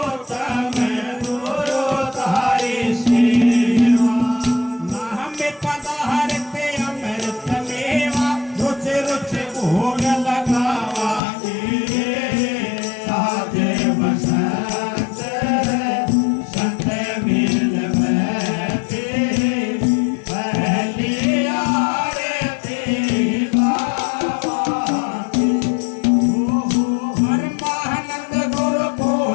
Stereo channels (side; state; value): right; drops out; at 11.2 s